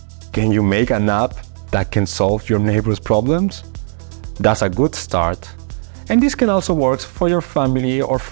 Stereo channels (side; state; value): left; silent; digital silence